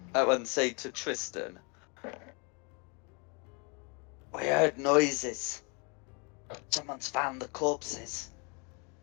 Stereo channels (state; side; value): quieter; right; 33.2 dB